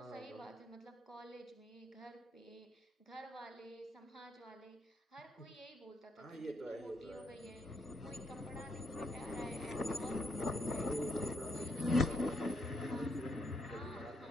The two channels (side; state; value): both; normal; correlation 0.76